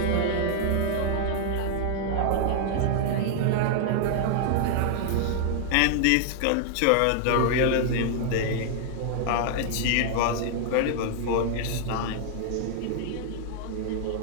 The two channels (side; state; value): both; different; correlation -0.01